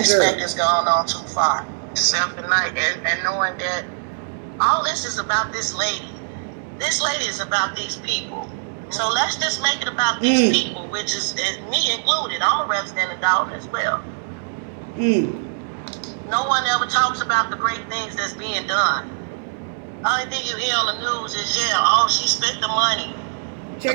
has gone on too far. Self-denial and knowing that all this is about this lady. This lady is about these people. So let's just make it about these people, which is me included. I'm a resident of Dalton as well. No one ever talks about the great things that's being done. Only thing you hear on the news is, she spent the money.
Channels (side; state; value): left; silent; digital silence